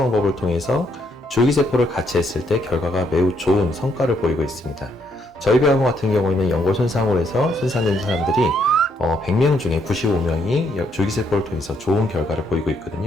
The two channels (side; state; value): both; normal; correlation 0.73